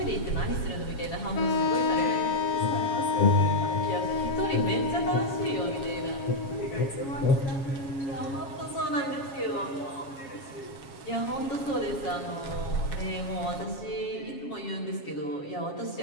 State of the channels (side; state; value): right; late; 7.3 ms